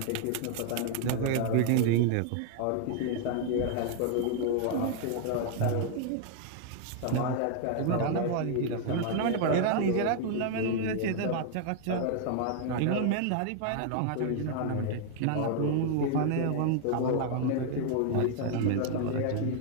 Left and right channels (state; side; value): different; both; correlation 0.00